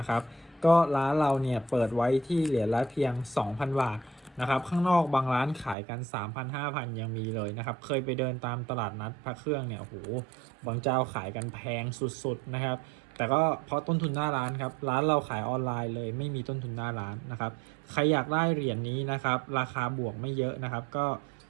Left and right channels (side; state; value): left; drops out; at 5.8 s